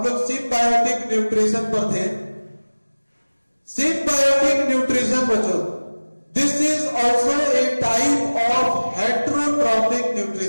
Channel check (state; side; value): inverted; both; correlation -1.00